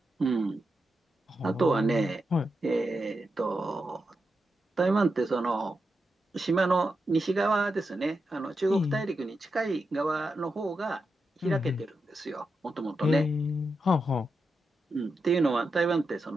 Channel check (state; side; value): normal; both; correlation 0.87